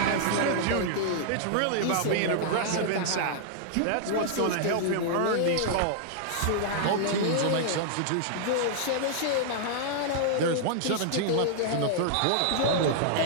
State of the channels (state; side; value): different; both; correlation -0.01